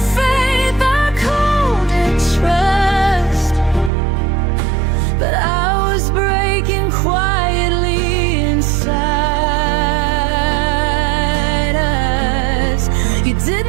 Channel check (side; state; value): left; drops out; at 3.9 s